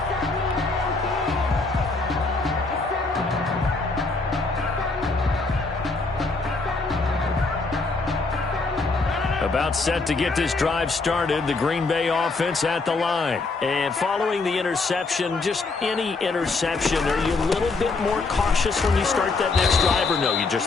About set to get this drive started, the Green Bay offense at the line. And following the interception, just any interception, are you a little bit more cautious when you start that next drive, or no, you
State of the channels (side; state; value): right; quieter; 3.8 dB